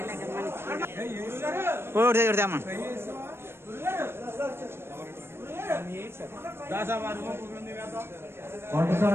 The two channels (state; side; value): late; left; 0.12 ms